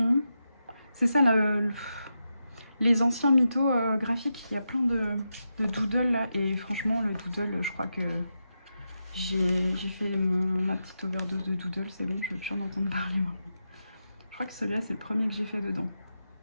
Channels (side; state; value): both; inverted; correlation -0.87